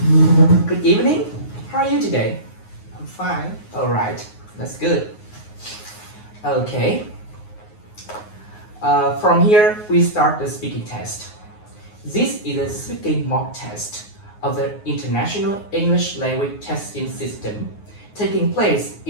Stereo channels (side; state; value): right; late; 9.5 ms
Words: Good evening. How are you today? I'm fine. All right, that's good. Okay. From here, we start the speaking test. This is a speaking mock test of the International English Language Testing System taking place